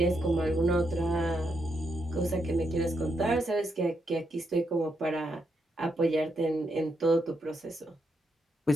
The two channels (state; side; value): normal; both; correlation 0.80